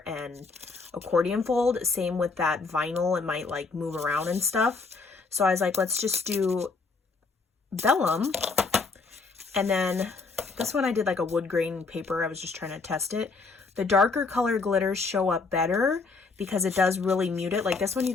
and accordion fold. Same with that vinyl, it might like move around and stuff. So I was like, let's just do vellum. And then this one I did like a wood grain paper. I was just trying to test it. The darker color glitters show up better because it does really mute it. Like this one, you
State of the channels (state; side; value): quieter; right; 4.2 dB